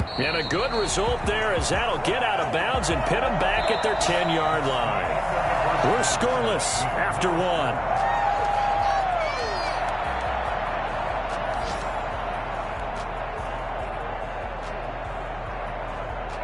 And a good result there as that'll get out of bounds and pin them back at their 10-yard line. We're scoreless after 1.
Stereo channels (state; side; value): identical; both; correlation 1.00